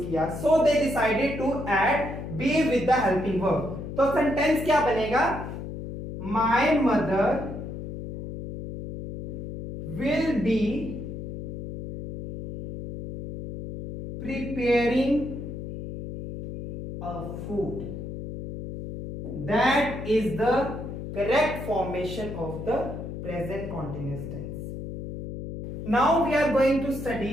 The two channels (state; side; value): noise; left; hum, 8 dB below the sound